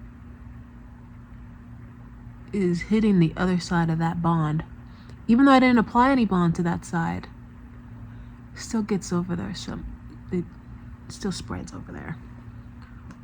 is hitting the other side of that bond. Even though I didn't apply any bond to that side, it still gets over there, so it still spreads over there.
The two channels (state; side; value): identical; both; correlation 1.00